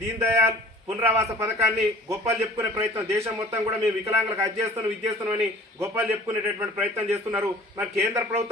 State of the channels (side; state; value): both; normal; correlation 0.47